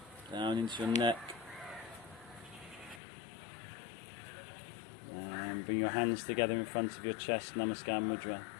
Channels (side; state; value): right; drops out; at 3.0 s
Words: Down into your neck. And bring your hands together in front of your chest, Namaskar Mudra.